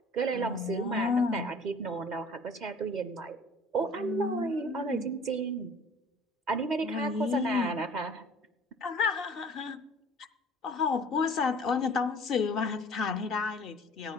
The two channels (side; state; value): both; normal; correlation 0.49